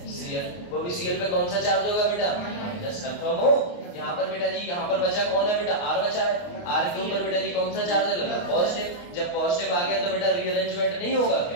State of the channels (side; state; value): right; late; 28 ms